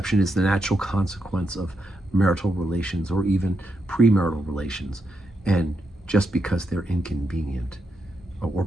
is the natural consequence of marital relations or even premarital relations. And just because they're inconvenient, or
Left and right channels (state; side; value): normal; both; correlation 0.83